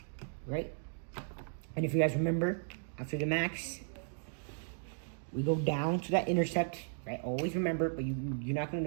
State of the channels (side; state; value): left; silent; digital silence